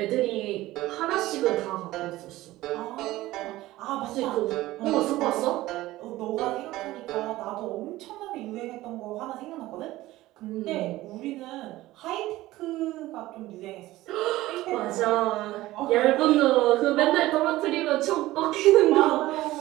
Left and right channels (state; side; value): quieter; left; 17.0 dB